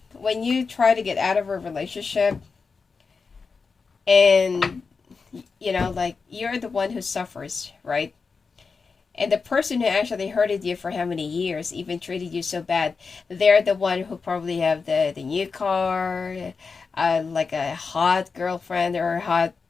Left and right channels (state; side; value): quieter; right; 4.9 dB